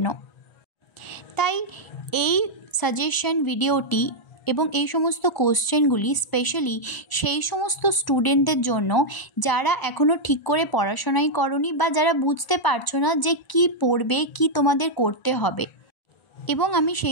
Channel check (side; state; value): right; late; 1.0 ms